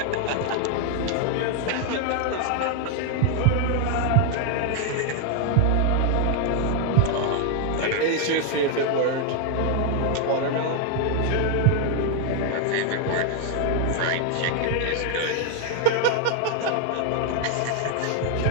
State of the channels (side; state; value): both; different; correlation 0.00